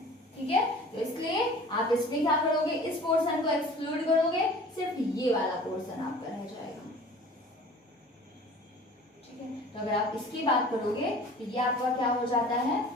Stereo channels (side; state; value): both; normal; correlation 0.45